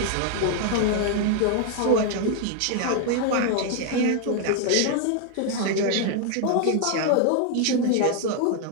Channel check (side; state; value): both; different; correlation 0.00